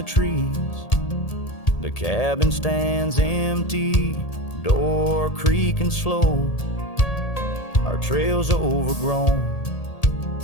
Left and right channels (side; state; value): right; late; 1.8 ms